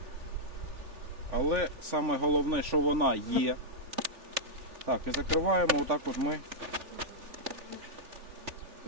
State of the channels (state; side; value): late; left; 3.4 ms